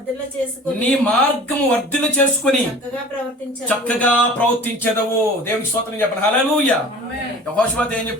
నీ మార్గము వర్ధిల్ల చేసుకుని చక్కగా ప్రవర్తించదవు. దేవునికి స్తోత్రం చెప్పండి. హల్లెలూయా. యెహోషువ ఏం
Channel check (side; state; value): both; normal; correlation 0.43